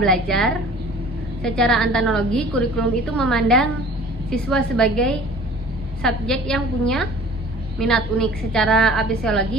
Belajar, secara analogi kurikulum itu memandang siswa sebagai subjek yang punya minat unik. Secara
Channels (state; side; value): normal; both; correlation 0.46